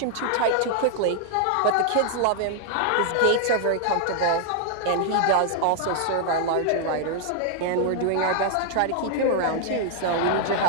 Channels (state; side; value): different; both; correlation 0.00